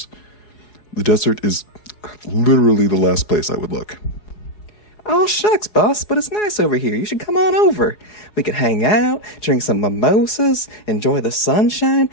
the desert is literally the last place I would look. Oh, shucks, boss, but it's nice over here. You should come on over. We could hang out, drink some mimosas, enjoy the sunshine,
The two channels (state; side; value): late; right; 4.8 ms